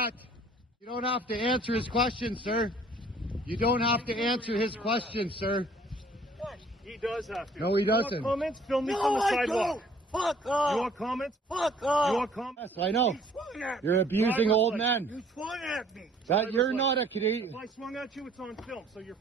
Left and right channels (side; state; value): both; normal; correlation 0.56